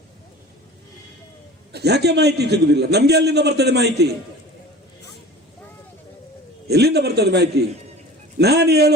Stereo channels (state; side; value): normal; both; correlation 0.40